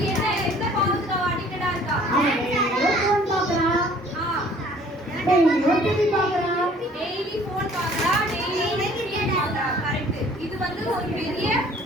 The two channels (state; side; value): normal; both; correlation 0.54